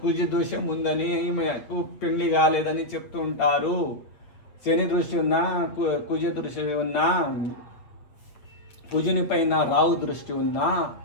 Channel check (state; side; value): late; right; 8.1 ms